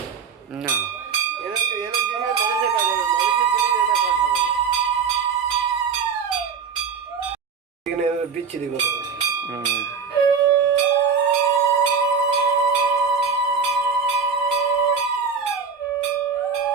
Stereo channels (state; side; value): quieter; left; 6.0 dB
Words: না, এরা জিনিস মানুষের কাজ হবে, মানুষের জিনিস এরা কাজ হবে। এখানে বিচ্ছিরি কথা।